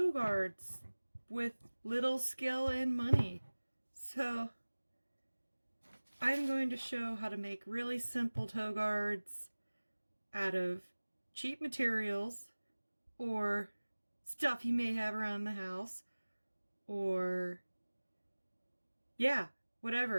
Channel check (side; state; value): both; inverted; correlation -1.00